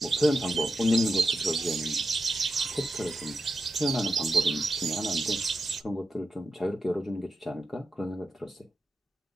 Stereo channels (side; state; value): both; normal; correlation 0.88